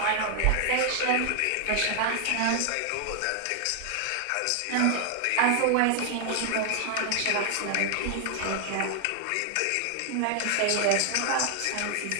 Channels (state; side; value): different; both; correlation 0.00